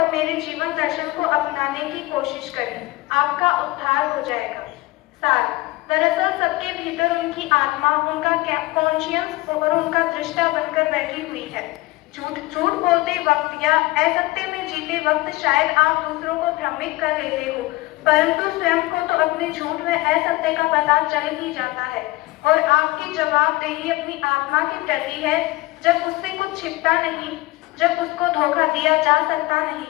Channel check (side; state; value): right; quieter; 20.2 dB